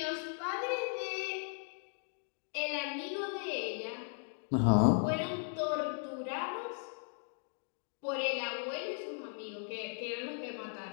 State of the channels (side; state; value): right; silent; 53 dB below the other